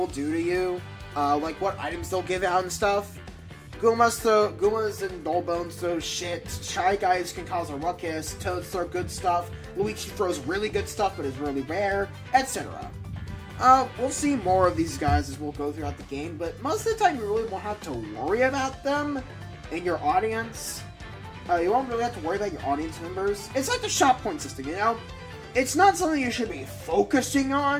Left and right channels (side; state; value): both; identical; correlation 1.00